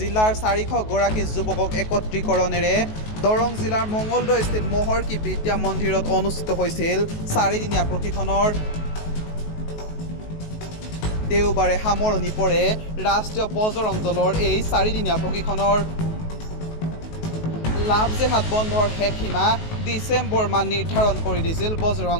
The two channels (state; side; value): late; right; 19 ms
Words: 400 গৰাকী যুৱকক একত্ৰীকৰণেৰে দৰং জিলাৰ মঙলদৈস্থিত মহৰ্ষি বিদ্যা মন্দিৰত অনুষ্ঠিত হৈছিল 4দিনীয়া প্ৰশিক্ষণৰ। দেওবাৰে সামৰণি পৰে ৰাষ্ট্ৰীয় বজৰং দলৰ এই 4দিনীয়া প্ৰশিক্ষণৰ। লাভ জেহাদ বন্ধৰ শেষ সীমা ডিচেম্বৰ মাহ নিৰ্ধাৰণ কৰি দিছিল বজৰং